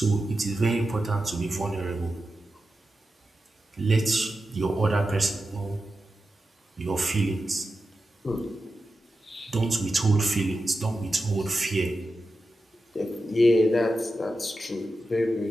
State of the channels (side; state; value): both; normal; correlation 0.91